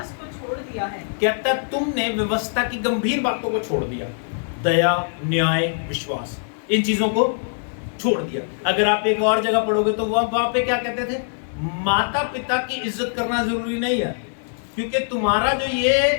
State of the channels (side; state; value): right; silent; digital silence